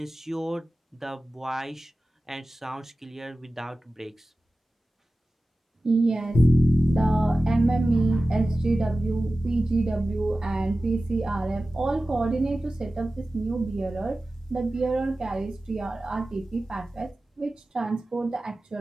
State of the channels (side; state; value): both; normal; correlation 0.96